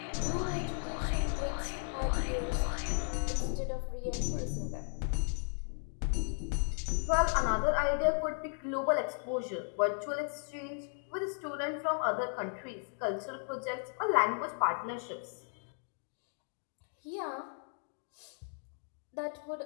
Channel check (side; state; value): right; silent; 54 dB below the other